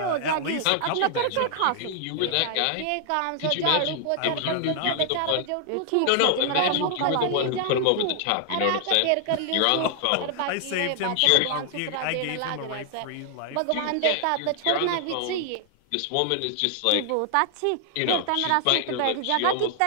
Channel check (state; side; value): different; both; correlation 0.00